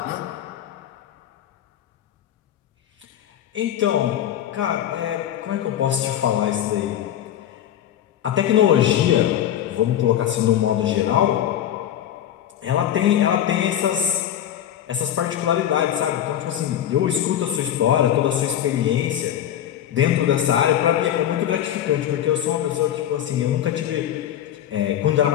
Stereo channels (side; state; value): right; quieter; 10.9 dB